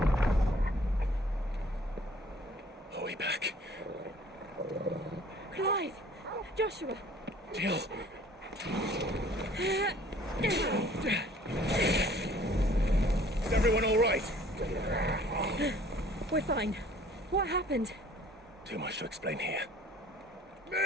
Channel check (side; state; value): both; normal; correlation 0.54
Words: Are we back? Clive! Joshua! Jill! Is everyone all right? We're fine. What happened? Too much to explain here.